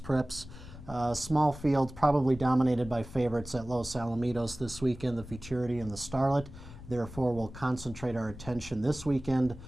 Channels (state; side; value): noise; left; rumble, 15 dB below the sound